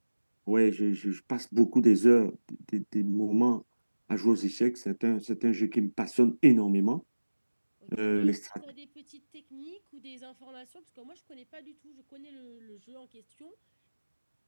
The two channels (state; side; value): inverted; both; correlation -1.00